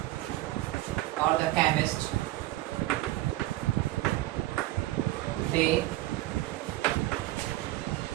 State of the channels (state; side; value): quieter; left; 16.8 dB